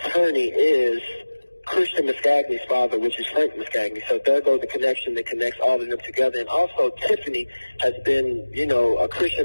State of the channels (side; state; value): both; inverted; correlation -1.00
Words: is Christian Muscagni's father, which is Frank Muscagni. So there goes the connection that connects all of them together. And also, Tiffany has been, a